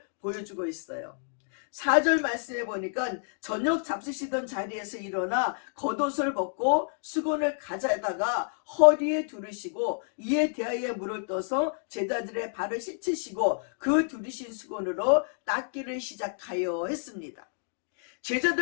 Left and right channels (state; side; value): silent; right; digital silence